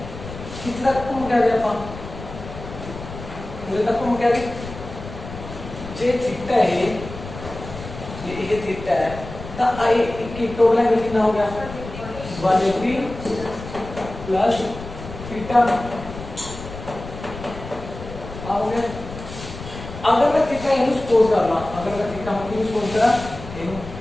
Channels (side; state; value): left; noise; rumble, 12 dB below the sound